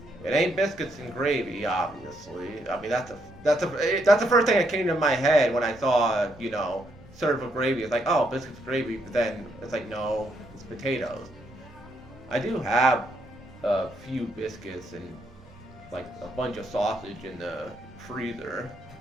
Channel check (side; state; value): both; normal; correlation 0.75